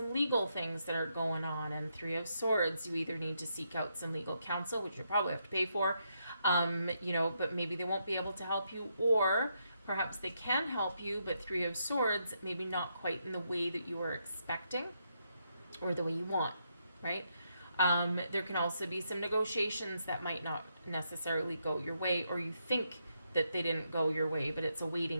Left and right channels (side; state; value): both; inverted; correlation -0.79